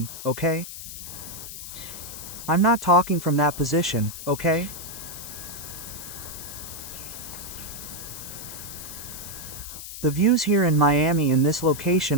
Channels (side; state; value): left; noise; hiss, 10 dB below the sound